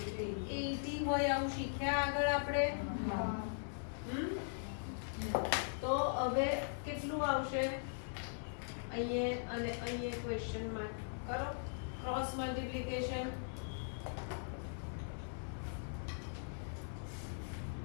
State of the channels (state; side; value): silent; right; 51 dB below the other